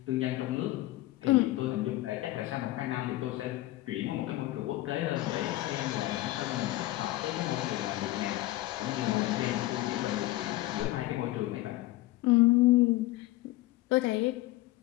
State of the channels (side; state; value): right; quieter; 17.4 dB